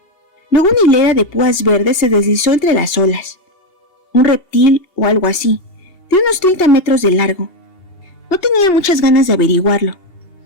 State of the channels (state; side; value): late; right; 2.8 ms